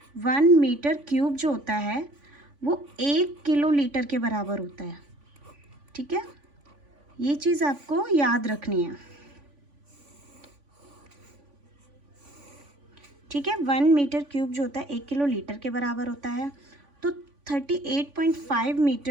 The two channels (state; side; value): late; left; 3.5 ms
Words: 1 मीटर क्यूब जो होता है वो 1 किलोलीटर के बराबर होता है। ठीक है, ये चीज़ आपको याद रखनी है। ठीक है, 1 मीटर क्यूब जो होता है 1 किलोलीटर के बराबर होता है। तो 38.5